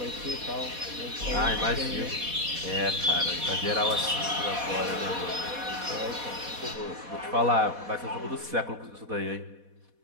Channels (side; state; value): left; late; 4.1 ms